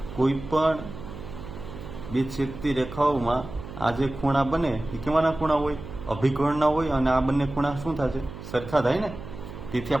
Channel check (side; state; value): right; noise; hum, 12 dB below the sound